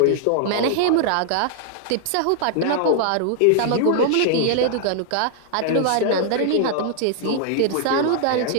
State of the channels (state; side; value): different; both; correlation 0.00